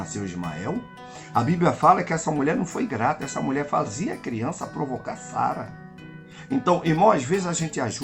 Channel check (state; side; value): identical; both; correlation 1.00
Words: Ismael. A Bíblia fala que essa mulher não foi grata. Essa mulher fazia a criança provocar Sara. Então, irmão, às vezes a gente